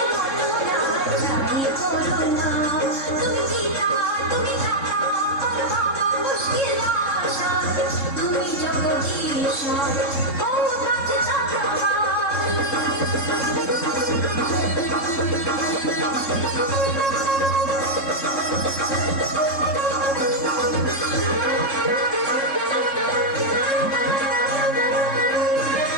মনোরা চাই করোনা, তুমি জিতা তুমি থাকা করবাবা মুশকিল আশা, তুমি জগদীশ ও কাছে যাকে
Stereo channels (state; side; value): late; right; 3.7 ms